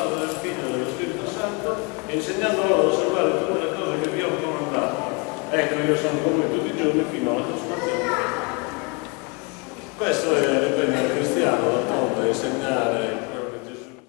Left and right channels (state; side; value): quieter; right; 31.3 dB